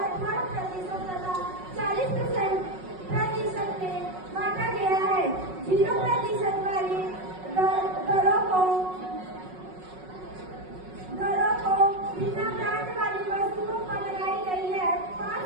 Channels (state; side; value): late; left; 5.4 ms